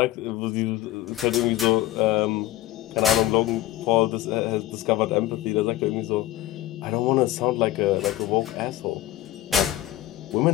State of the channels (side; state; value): right; quieter; 14.9 dB